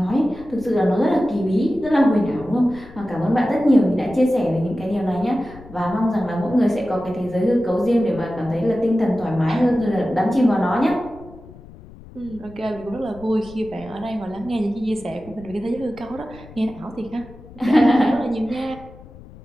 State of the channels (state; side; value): noise; left; rumble, 19 dB below the sound